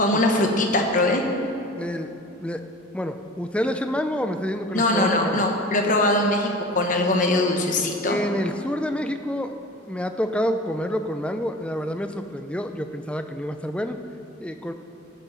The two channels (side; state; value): both; normal; correlation 0.40